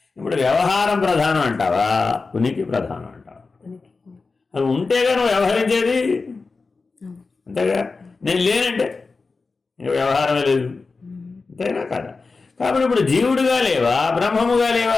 ఇప్పుడు వ్యవహారం ప్రధానం అంటావా, ఉనికి ప్రధానం అంటావా? అది ఉంటేగా నువ్వు వ్యవహరించేది. అంతేగా. నేను లేనంటే వ్యవహారమే లేదు. అంతేనా కదా? కాబట్టి ఇప్పుడు జీవుడుగా లేవా, బ్రహ్మముగా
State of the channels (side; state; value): right; quieter; 4.1 dB